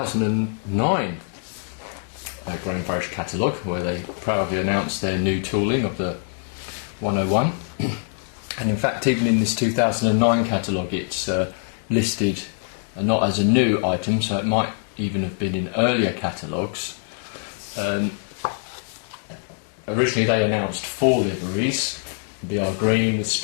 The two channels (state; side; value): silent; right; 63 dB below the other